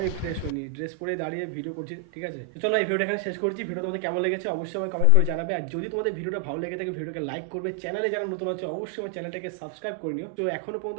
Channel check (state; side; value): different; both; correlation 0.00